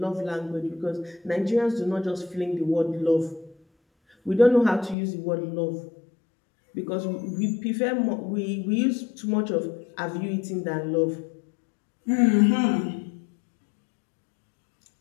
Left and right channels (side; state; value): right; drops out; at 5.0 s